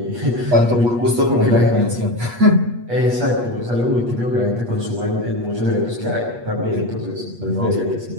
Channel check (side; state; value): left; late; 8.3 ms